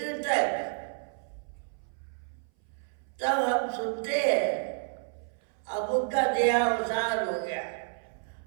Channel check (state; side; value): silent; left; 57 dB below the other